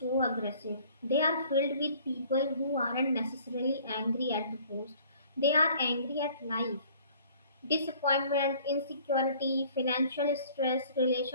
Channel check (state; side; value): inverted; both; correlation -0.54